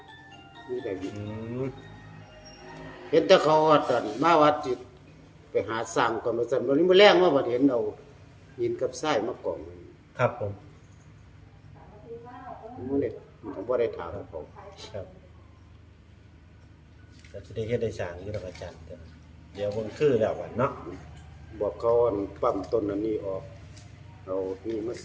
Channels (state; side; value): identical; both; correlation 1.00